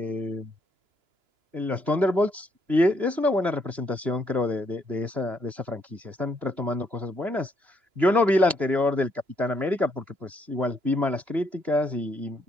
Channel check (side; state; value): left; late; 2.9 ms